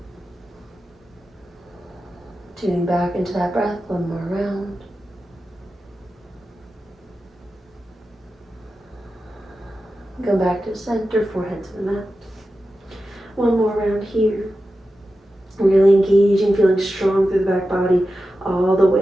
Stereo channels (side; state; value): both; normal; correlation 0.92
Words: Tuning back into that breath, one more round. Go back to center, forehead to the mat. One more round here. Really engaging, feeling strong through the back body, all the